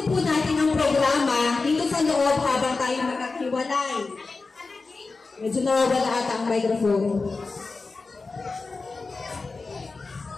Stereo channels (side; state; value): right; quieter; 4.0 dB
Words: po natin ang programa dito sa loob habang tayo magkakiwalay. Medyo nawawala ata ang microphone.